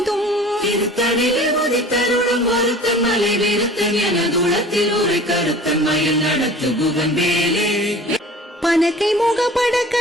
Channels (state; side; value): normal; both; correlation 0.43